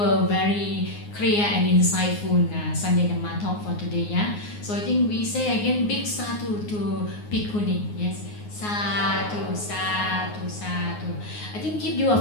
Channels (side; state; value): right; late; 9.6 ms